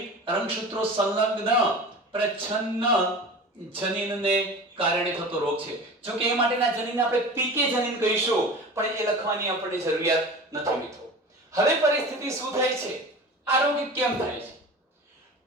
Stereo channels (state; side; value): normal; both; correlation 0.35